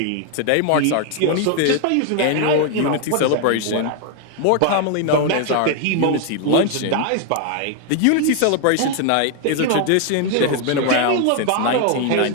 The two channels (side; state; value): both; different; correlation 0.00